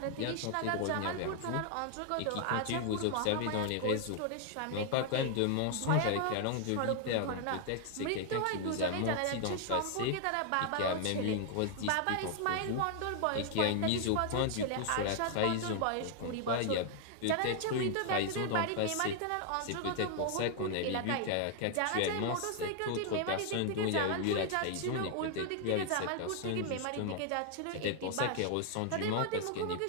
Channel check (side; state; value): both; different; correlation 0.00